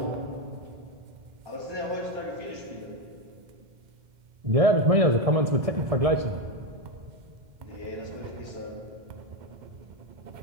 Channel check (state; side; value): late; left; 1.7 ms